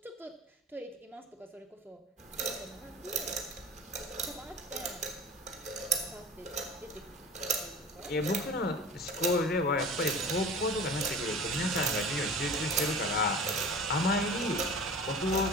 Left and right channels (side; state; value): both; normal; correlation 0.38